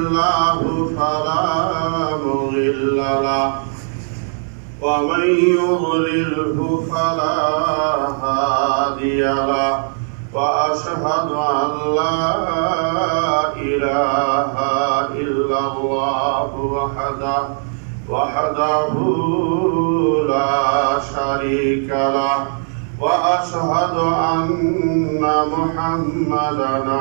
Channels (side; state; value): left; silent; digital silence